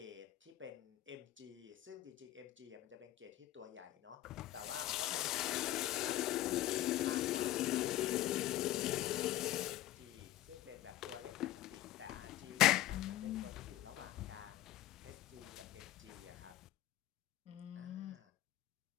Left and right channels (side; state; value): right; quieter; 14.8 dB